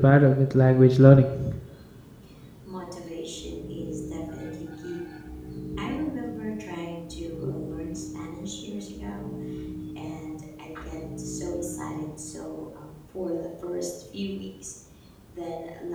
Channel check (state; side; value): identical; both; correlation 1.00